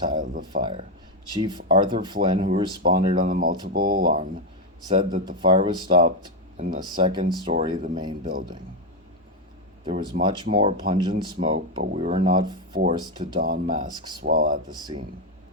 the fire. Chief Arthur Flynn, who responded on the multiple alarm, said that the fire was stopped in the second story of the main building. There was much more pungent smoke, but we were not forced to don masks while at the scene.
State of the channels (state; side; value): normal; both; correlation 0.06